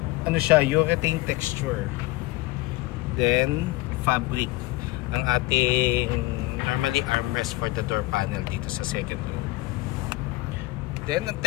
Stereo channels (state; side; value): quieter; right; 19.8 dB